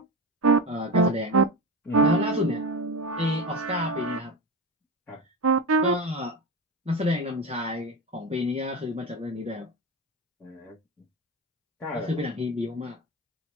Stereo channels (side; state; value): both; normal; correlation 0.22